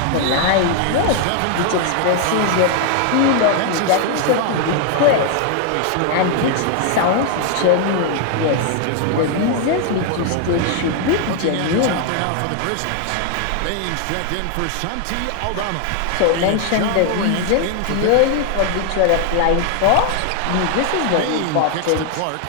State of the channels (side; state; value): both; different; correlation 0.00